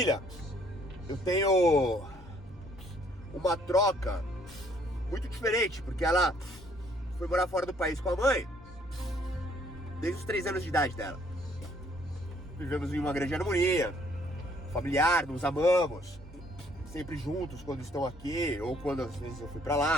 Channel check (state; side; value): normal; both; correlation 0.64